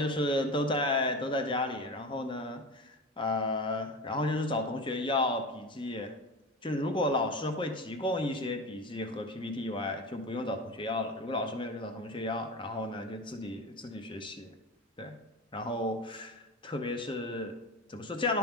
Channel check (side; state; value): both; normal; correlation 0.27